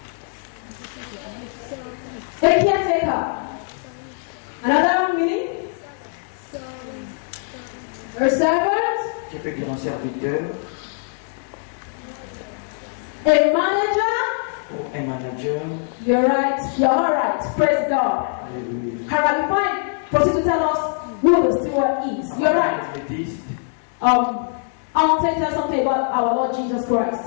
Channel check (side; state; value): right; silent; 60 dB below the other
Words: A caretaker. Another meaning? A servant? Qui peut dire un serviteur? A manager? Ou un manager? You're right. You're all right. Praise God. Alléluia. Alright, before I proceed to tell us who the steward is, you're right. Méthodiste, I want to tell something about our Lord Jesus Christ.